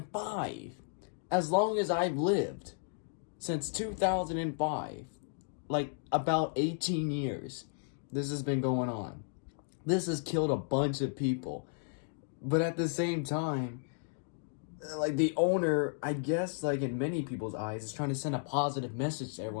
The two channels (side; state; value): right; silent; digital silence